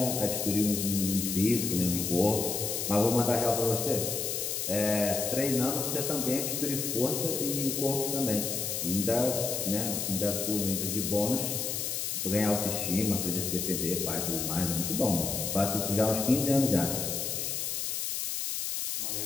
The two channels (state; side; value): noise; left; hiss, 2 dB below the sound